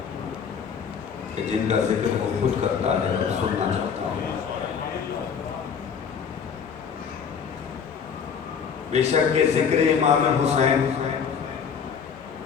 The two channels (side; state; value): right; quieter; 6.8 dB